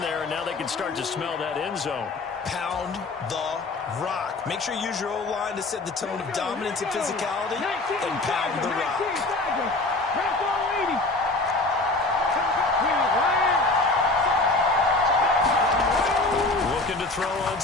there, and now they can start to smell that end zone. Pound the rock. Make sure you use your O-line to set the tone of dominance and physicality, and pound the rock. Looking to throw on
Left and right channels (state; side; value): quieter; right; 3.1 dB